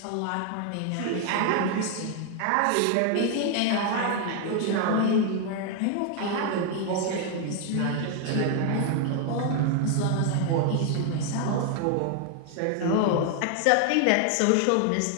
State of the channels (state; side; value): different; both; correlation 0.00